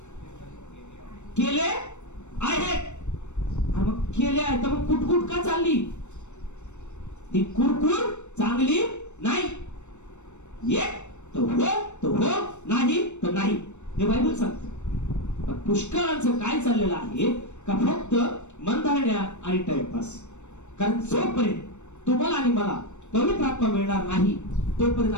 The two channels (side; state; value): right; late; 0.83 ms